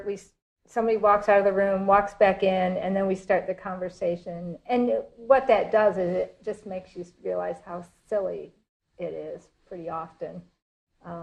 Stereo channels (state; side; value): identical; both; correlation 1.00